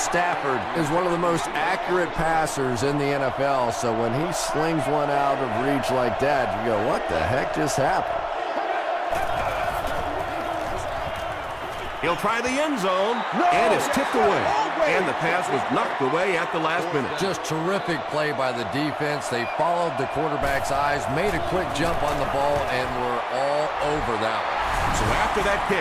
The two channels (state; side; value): identical; both; correlation 1.00